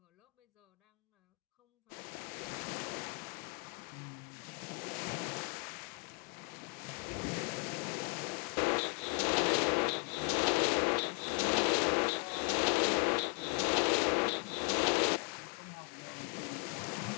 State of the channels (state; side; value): quieter; right; 36.1 dB